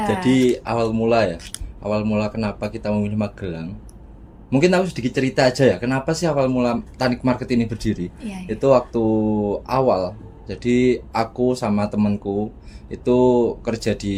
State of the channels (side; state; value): both; identical; correlation 1.00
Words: Jadi awal mula kenapa kita memilih Magelang? Mungkin aku sedikit cerita aja ya, kenapa sih awal mula Tanik Market ini berdiri? Iya. Itu waktu awal, jadi aku sama temanku itu kerja